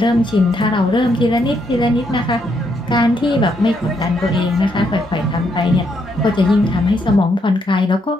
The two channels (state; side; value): normal; both; correlation 0.75